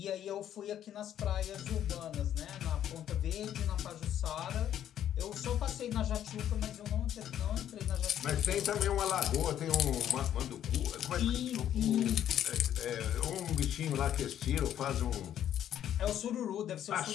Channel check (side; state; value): right; quieter; 10.6 dB